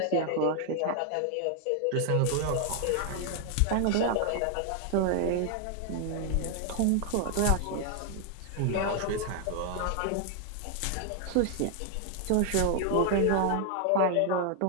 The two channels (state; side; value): different; both; correlation 0.00